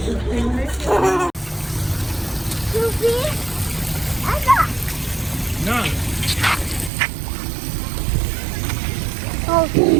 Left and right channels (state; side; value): drops out; left; at 6.9 s